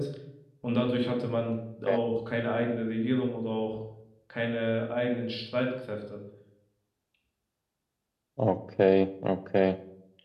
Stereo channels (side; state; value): both; identical; correlation 1.00